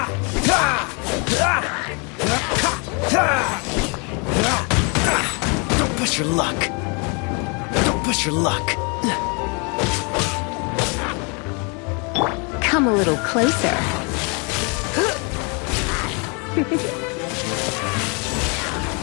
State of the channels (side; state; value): right; quieter; 33.3 dB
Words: Don't push your luck. Don't push your luck. Come a little closer.